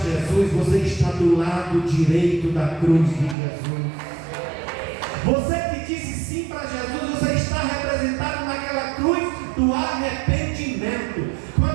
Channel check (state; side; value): drops out; left; at 3.4 s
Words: você está do lado direito da cruz de Jesus. Você que disse sim para Jesus, você está representado naquela cruz do arrependimento.